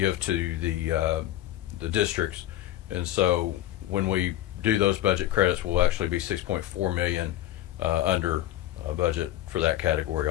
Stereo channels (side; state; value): right; quieter; 13.6 dB